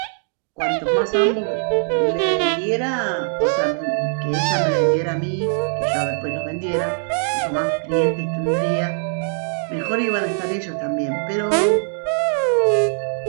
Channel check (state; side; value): silent; left; 65 dB below the other